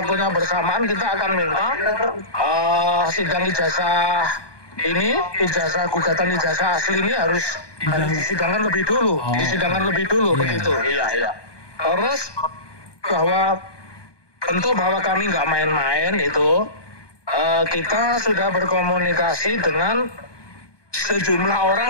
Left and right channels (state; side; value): late; right; 1.2 ms